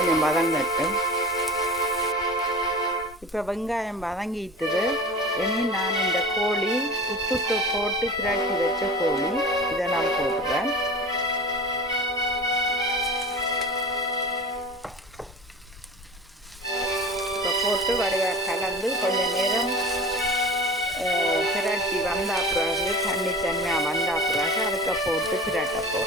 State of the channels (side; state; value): both; normal; correlation 0.35